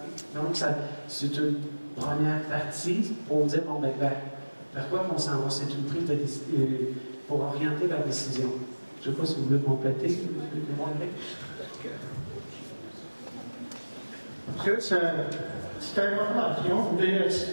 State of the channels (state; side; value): inverted; both; correlation -1.00